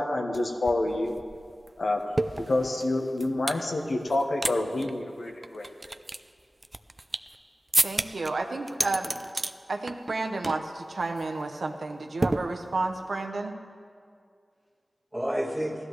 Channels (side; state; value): both; normal; correlation 0.95